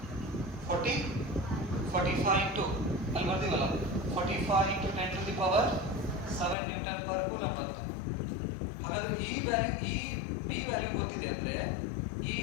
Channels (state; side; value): drops out; right; at 6.6 s